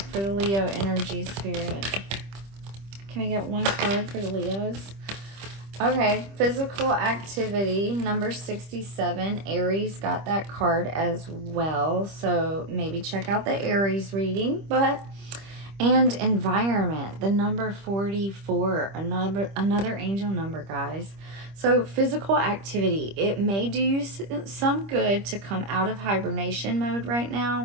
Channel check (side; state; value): left; late; 25 ms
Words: for the Leo energy, Spirit? Can we get one card for the Leos? Okay, physical activity, number 67. Aries got that card as well. So maybe check out the Aries reading. And environment, the number 44, another angel number, guys. So physical activity, it may do you some good to come out of hibernation mode right